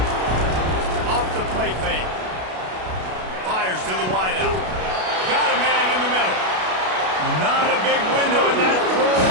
Off the play fake. Fires to the wideout. Got a man in the middle. Not a big window, and that throw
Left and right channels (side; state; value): left; late; 32 ms